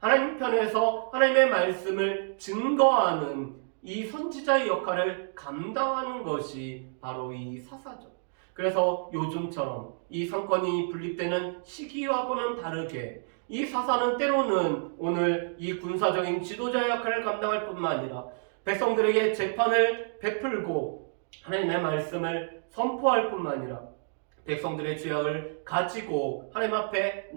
하나님 편에서 하나님의 말씀을 증거하는 이 선지자의 역할을 감당하는 것이 바로 이 사사죠. 그래서 요즘처럼 이 상권이 분립되는 시기와는 다르게 이 사사는 때로는 오늘 이 군사적인 지도자의 역할을 감당할 뿐만 아니라 백성들에게 재판을 베풀고 하나님의 말씀을 선포할 뿐만 아니라 백성들의 죄악을 가지고 하나님 앞에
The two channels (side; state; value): left; silent; digital silence